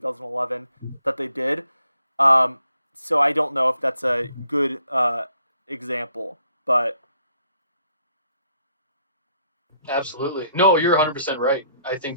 that they did. Um, so I don't know if that's a good example, but Absolutely. No, you're 100% right. I think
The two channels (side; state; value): both; inverted; correlation -0.69